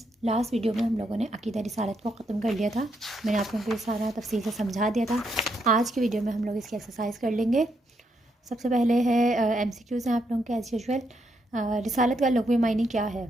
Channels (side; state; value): both; normal; correlation 0.78